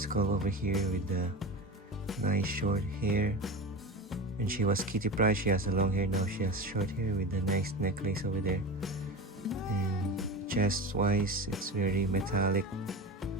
over here with the nice short hair. When she was Kitty Pryde, she has a long hair. Now she has short hair with the nice necklace over there. And chest wise, it's very metallic.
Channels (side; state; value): both; normal; correlation 0.27